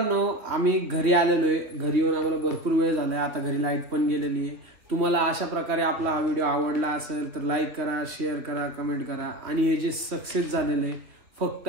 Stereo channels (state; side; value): late; left; 2.9 ms